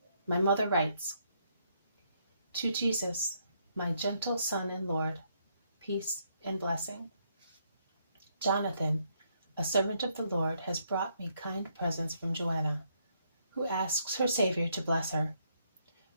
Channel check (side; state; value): both; inverted; correlation -0.73